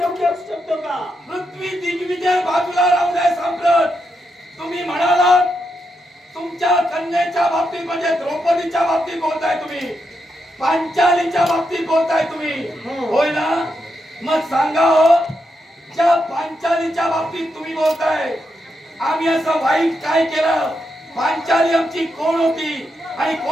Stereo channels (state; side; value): normal; both; correlation 0.83